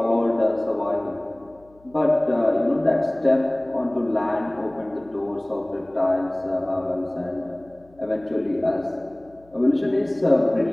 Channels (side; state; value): left; noise; hum, 29 dB below the sound